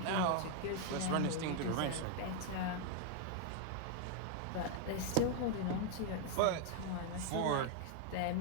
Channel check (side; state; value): both; different; correlation 0.00